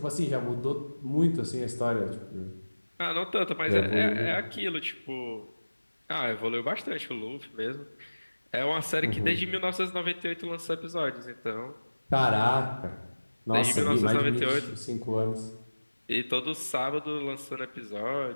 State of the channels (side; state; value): both; inverted; correlation -1.00